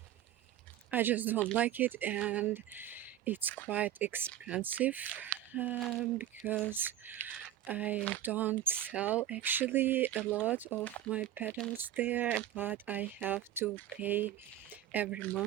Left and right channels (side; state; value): left; quieter; 12.0 dB